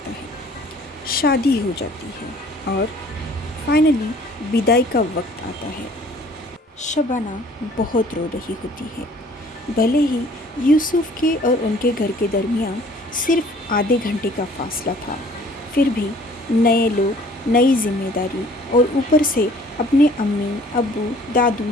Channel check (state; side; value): normal; both; correlation 0.54